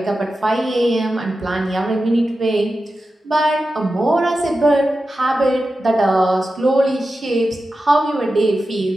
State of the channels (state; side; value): normal; both; correlation 0.92